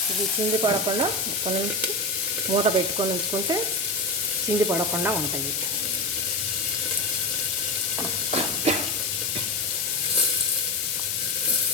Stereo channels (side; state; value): left; noise; hiss, 1 dB below the sound